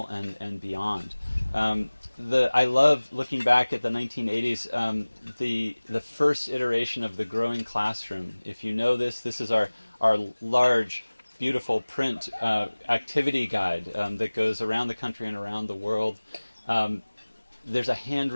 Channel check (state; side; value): inverted; both; correlation -1.00